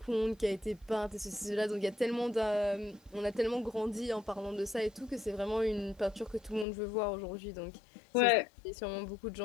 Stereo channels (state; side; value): drops out; right; at 6.7 s